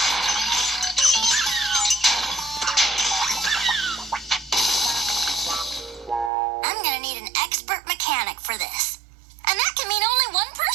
I'm gonna need an expert mechanic for this. And that can mean only one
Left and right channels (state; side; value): drops out; left; at 6.3 s